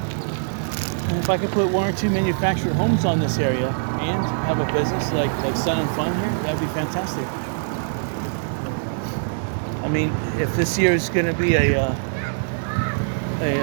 And if I could put one or two manufactured homes on this area and have a business like Sun and Fun here, that would be fantastic. I mean, if this year is going to be a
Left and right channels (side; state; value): left; silent; 63 dB below the other